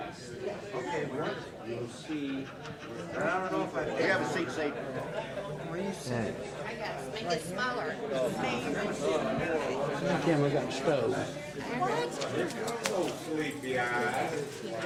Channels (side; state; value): both; identical; correlation 1.00